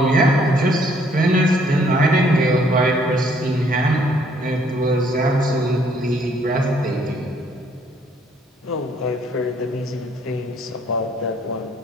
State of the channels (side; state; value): both; normal; correlation 0.64